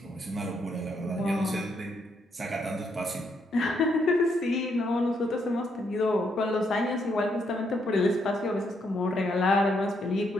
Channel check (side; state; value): both; normal; correlation 0.75